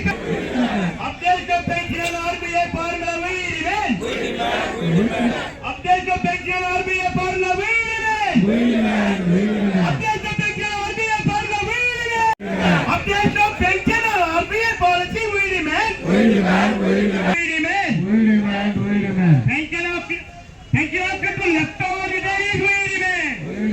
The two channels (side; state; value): both; identical; correlation 1.00